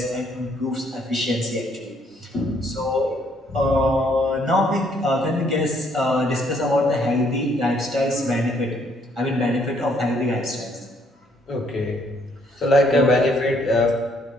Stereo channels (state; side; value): normal; both; correlation 0.67